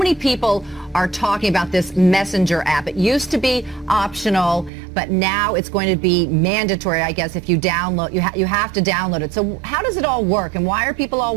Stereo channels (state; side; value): drops out; left; at 4.7 s